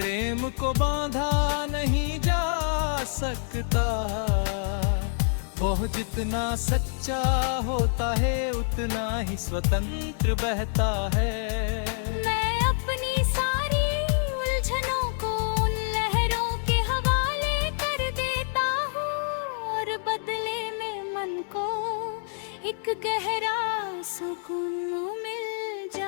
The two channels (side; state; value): right; silent; digital silence